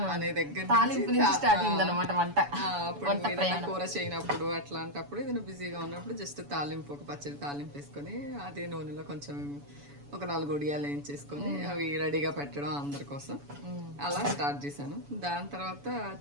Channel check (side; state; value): left; late; 7.0 ms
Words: అనే దగ్గర అప్పుడు ఏదైనా కూర చేయనప్పుడు అట్లాంటప్పుడు ఏదైనా బిజీగా ఉన్నప్పుడు జస్ట్ తాలింపు ఒక పచ్చడి తాలింపు వేసుకొని అదే నూనెలో కొంచెం ఒక 4 ఒడియాలు వేయించేసుకొని అవి రెడీగా పెట్టడం అందరి కోసం అలా స్టార్ట్ చేశాను. దాని తర్వాత